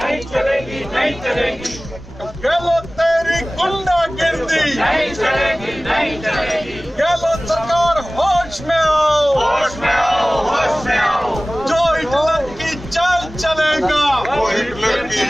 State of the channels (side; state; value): both; normal; correlation 0.98